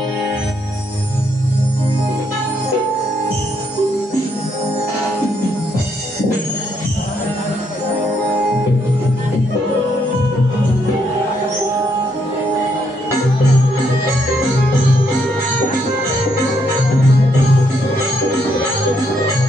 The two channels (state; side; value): normal; both; correlation 0.74